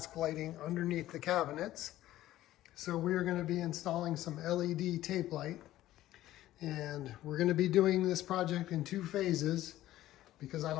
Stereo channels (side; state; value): right; quieter; 14.5 dB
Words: lighting underneath the cabinets. So we're going to be installing some LED tape light. And we're going to be doing this project in 2 phases because I